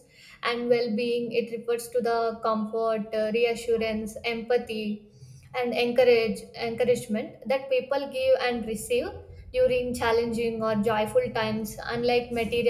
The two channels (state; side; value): identical; both; correlation 1.00